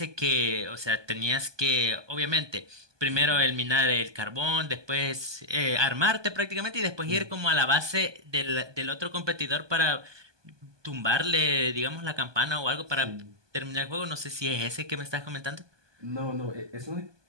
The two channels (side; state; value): left; late; 1.2 ms